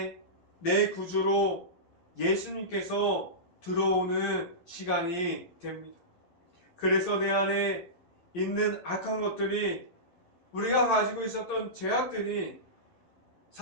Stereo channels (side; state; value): right; late; 11 ms